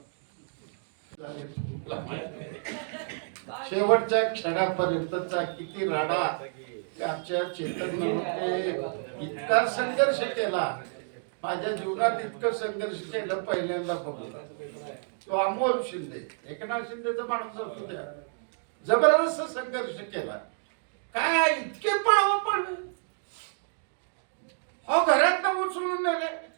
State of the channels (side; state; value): left; silent; digital silence